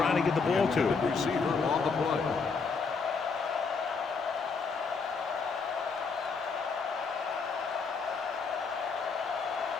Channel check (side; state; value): right; quieter; 4.9 dB